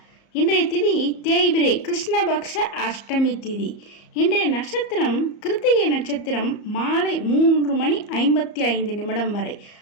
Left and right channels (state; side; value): late; right; 34 ms